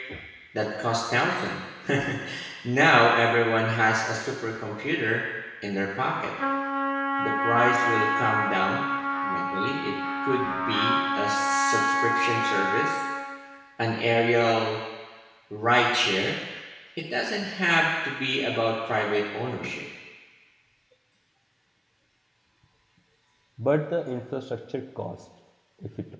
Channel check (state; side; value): identical; both; correlation 1.00